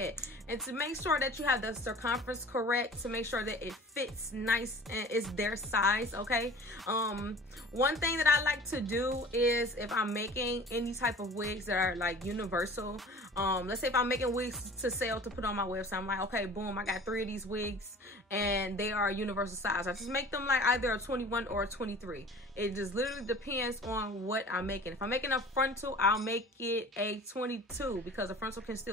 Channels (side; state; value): both; normal; correlation 0.44